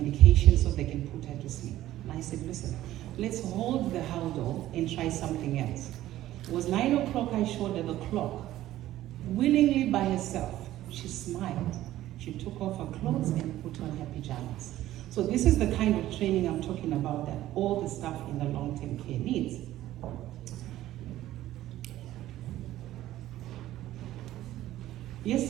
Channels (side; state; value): left; quieter; 14.3 dB